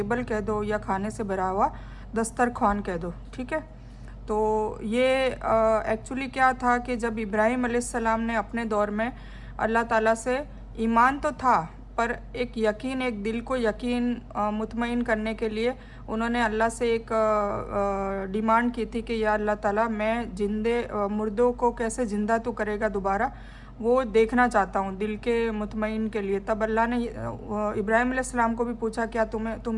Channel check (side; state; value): both; identical; correlation 1.00